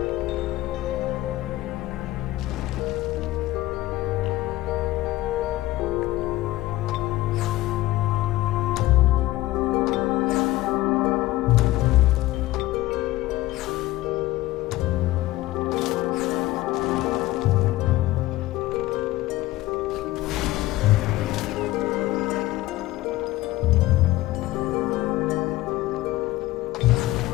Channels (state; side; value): quieter; right; 17.1 dB